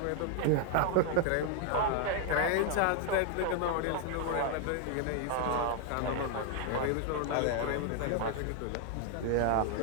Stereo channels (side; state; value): both; different; correlation 0.00